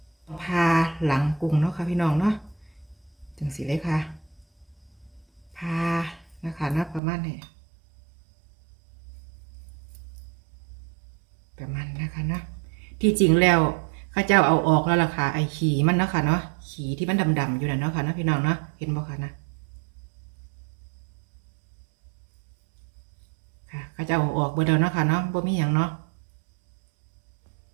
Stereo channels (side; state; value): left; drops out; at 7.0 s